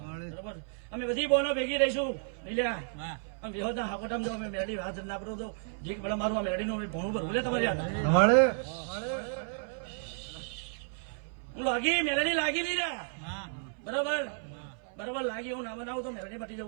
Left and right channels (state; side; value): silent; left; 56 dB below the other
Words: અમે બધી બોનો ભેગી રહીશું લીલ્યા અમે વિહો ના હાકોટામ જો અમે મેલડી વાત ના પડું તો ધીક પડે મારું મેલડી નું ભણું ભરવું લે તમારી હું લાગી મેલડી લાગી લીલ્યા બરાબર બરાબર લાગી હું ના બનાવું તો મેલડી મટી